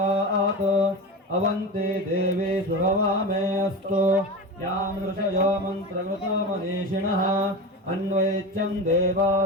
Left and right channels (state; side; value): normal; both; correlation 0.25